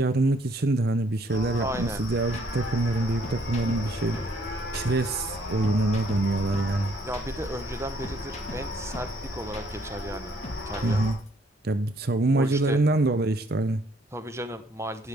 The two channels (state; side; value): normal; both; correlation 0.66